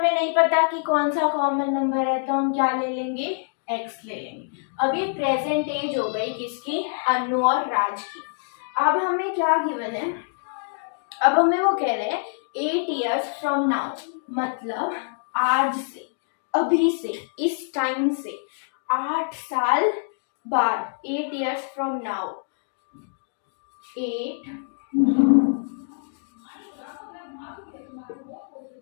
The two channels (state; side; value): silent; right; digital silence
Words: नहीं पता कि कौन सा कॉमन नंबर है, तो हम क्या ले लेंगे, x ले लेंगे। अब ये प्रेजेंट एज हो गई किसकी, अनु और राज की। अब हमें क्या गिवन है, अब हमें वो कह रहे हैं 8 years from now, मतलब आज से, अभी से, इस टाइम से 8 साल बाद, 8 years from now,